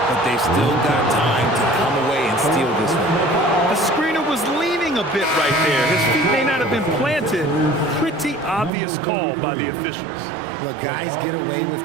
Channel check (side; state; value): left; drops out; at 8.7 s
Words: but they've still got time to come away and steal this one. The screener was leaning a bit right there. His feet may not have been planted. Pretty obvious call by the officials. Look, guys get away with